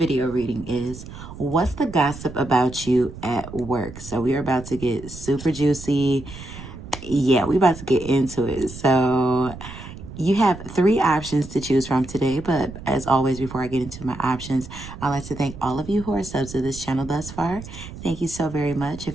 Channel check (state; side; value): noise; right; rumble, 13 dB below the sound